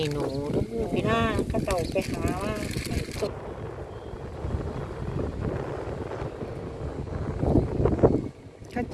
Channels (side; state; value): both; identical; correlation 1.00